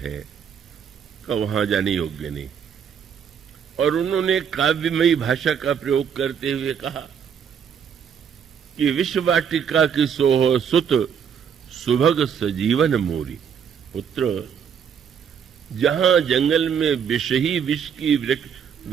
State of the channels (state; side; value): quieter; left; 7.6 dB